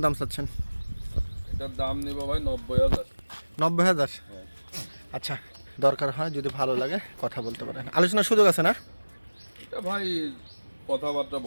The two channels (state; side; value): inverted; both; correlation -1.00